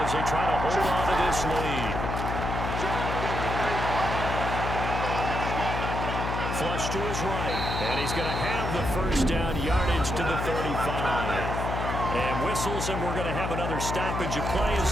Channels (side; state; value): left; noise; hum, 3 dB below the sound